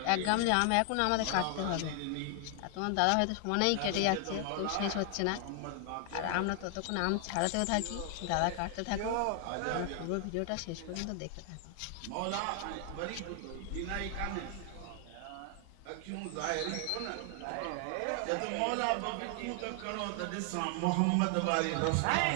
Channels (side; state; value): both; different; correlation 0.00